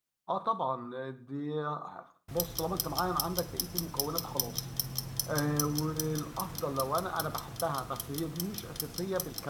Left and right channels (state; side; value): identical; both; correlation 1.00